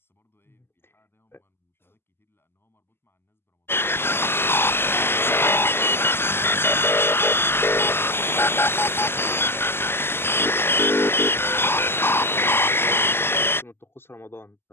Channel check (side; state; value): right; late; 0.11 ms